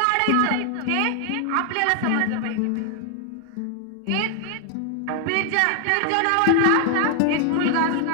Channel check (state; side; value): different; both; correlation 0.00